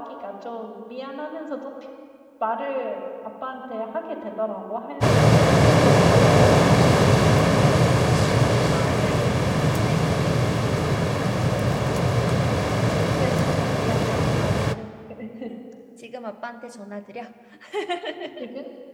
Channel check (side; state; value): both; identical; correlation 1.00